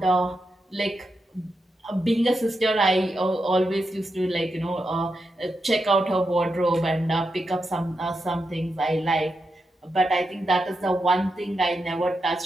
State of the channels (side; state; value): both; normal; correlation 0.86